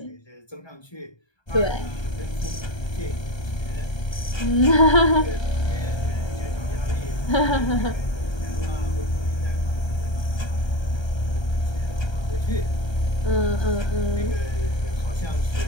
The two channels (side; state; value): right; late; 1.3 ms